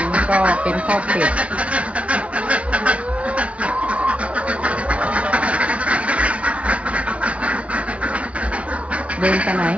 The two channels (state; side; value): late; left; 0.063 ms